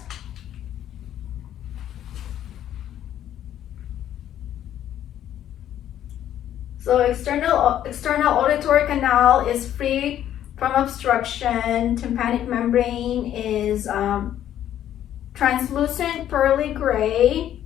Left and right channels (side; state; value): right; quieter; 11.2 dB